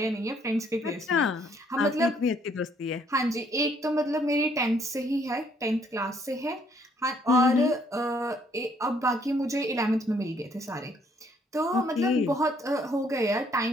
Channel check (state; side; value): normal; both; correlation 0.66